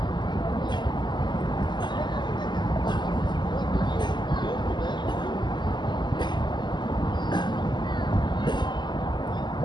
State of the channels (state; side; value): late; right; 0.21 ms